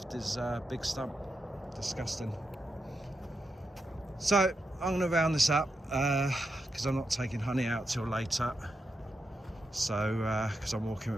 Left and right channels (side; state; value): both; normal; correlation 0.86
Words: is a big stump. Disgusting. So I'm going to round this up because I'm not taking honey out till later. So because I'm walking